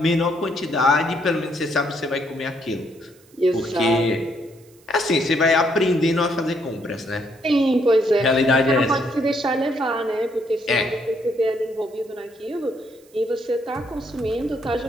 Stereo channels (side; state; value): right; noise; hiss, 29 dB below the sound